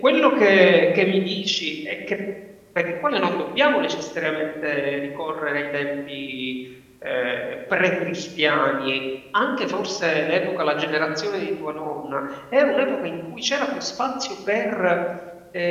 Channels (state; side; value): identical; both; correlation 1.00